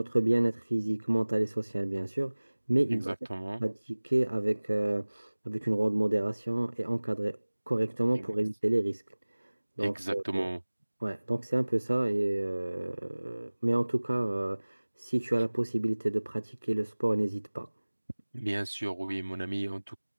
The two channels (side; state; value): both; inverted; correlation -1.00